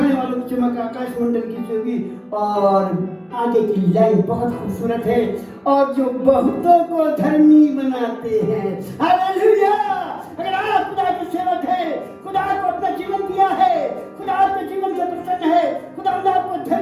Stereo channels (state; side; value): identical; both; correlation 1.00